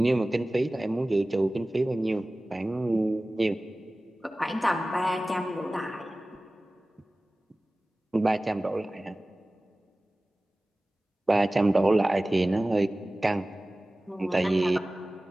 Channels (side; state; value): both; normal; correlation 0.97